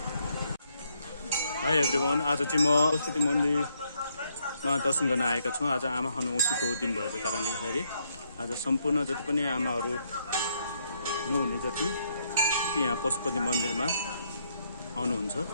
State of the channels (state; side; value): inverted; both; correlation -0.74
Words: हाई एभ्रिवान, आज चाहिँ म पशुपति मन्दिरमा दर्शन गर्न आएका छौँ। आज आमा खानु औँसीको दिन भएको कारणले गर्दाखेरि आज सम्पूर्ण जति पनि आमाहरू नहुने जति यहाँ पशुपति मन्दिरमा आउनुहुन्छ